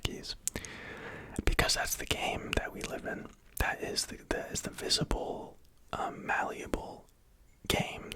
Because that's the game that we live in. That is the visible, malleable game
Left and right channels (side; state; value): both; identical; correlation 1.00